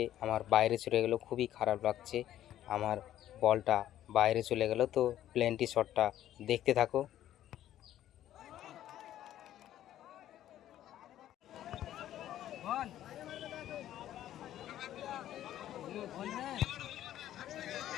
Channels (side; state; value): right; quieter; 12.3 dB